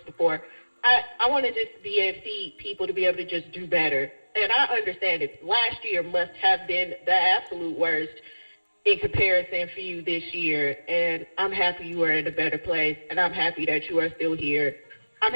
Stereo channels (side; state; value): both; inverted; correlation -1.00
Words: before, I want to just be able to see people to be able to just do better. And I understand it. Last year must have been the absolute worst in comparison for you this year, and I'm happy you are in a better place, and I'm happy that you are still here. I'm